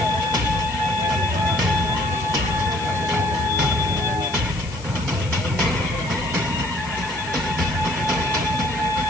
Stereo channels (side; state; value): left; noise; hiss, 18 dB below the sound